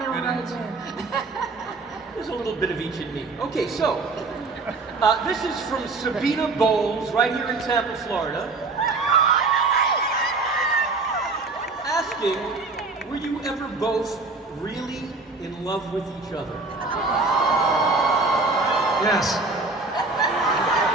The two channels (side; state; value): left; quieter; 3.7 dB